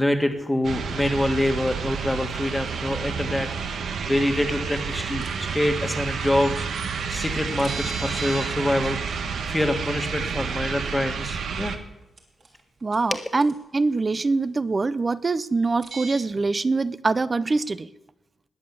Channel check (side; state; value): both; normal; correlation 0.91